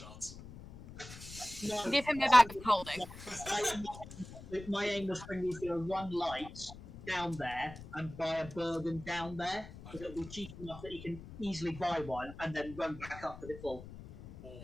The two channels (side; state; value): left; noise; rumble, 15 dB below the sound